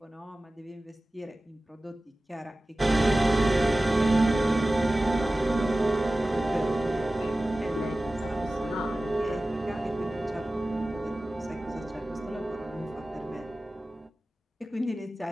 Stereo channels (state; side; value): normal; both; correlation 0.96